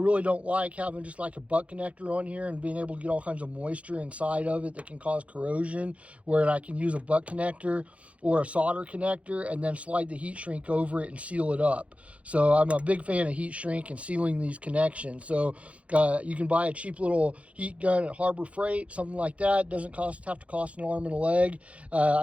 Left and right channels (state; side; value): late; left; 0.064 ms